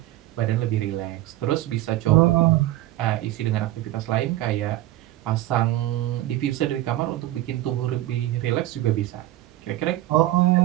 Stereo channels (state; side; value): quieter; left; 15.5 dB